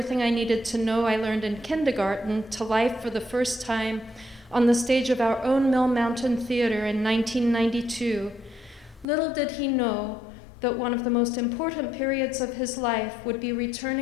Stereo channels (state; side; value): drops out; right; at 9.1 s